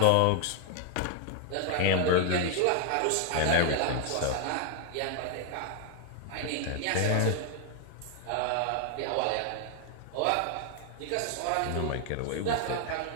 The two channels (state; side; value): different; both; correlation 0.00